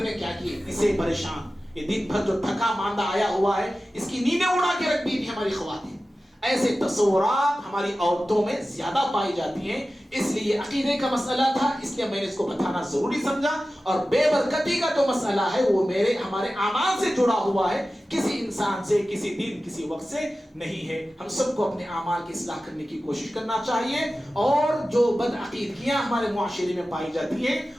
میں کیا کی. اسے پریشان، یہ دن بھر جو تھکا ماندہ آیا ہوا ہے، اس کی نیندیں اڑا کے رکھ دی تھی ہماری خواتین. ایسے تصورات ہماری عورتوں میں زیادہ پائی جاتی ہیں. اس لیے عقیدے کا مسئلہ تھا، اس لیے میں نے اس کو بتانا ضروری سمجھا. اور بے برکتی کا جو مسئلہ ہے وہ ہمارے اعمال سے جڑا ہوا ہے، کسی انسان سے، کسی دن، کسی وقت سے نہیں ہے. ہم سب کو اپنے اعمال کی اصلاح کرنے کی کوشش کرنا چاہیے. اور جو بدعقیدگیاں ہمارے معاشرے میں پائی جاتی ہیں،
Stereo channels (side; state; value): both; normal; correlation 0.95